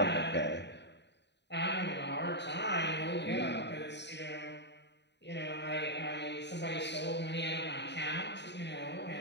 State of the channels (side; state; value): right; late; 0.50 ms